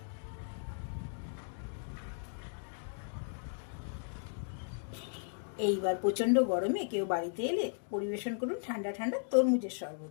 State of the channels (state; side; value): silent; right; digital silence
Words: এইবার প্রচন্ড গরমে কেউ বাড়িতে এলে পরিবেশন করুন ঠান্ডা ঠান্ডা তরমুজের